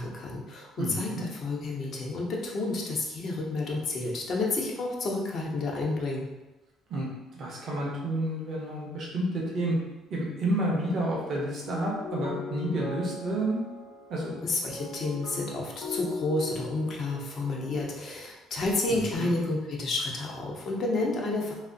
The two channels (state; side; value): normal; both; correlation 0.66